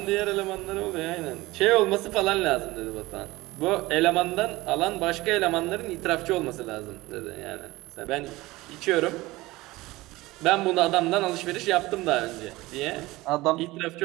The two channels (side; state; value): left; quieter; 19.7 dB